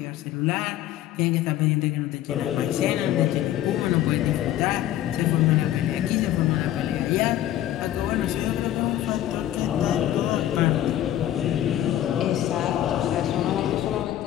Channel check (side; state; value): right; quieter; 12.6 dB